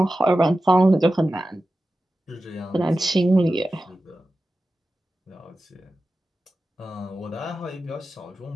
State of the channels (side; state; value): both; normal; correlation 0.94